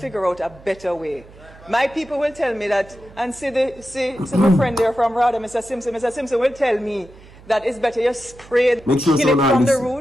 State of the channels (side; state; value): right; noise; hum, 22 dB below the sound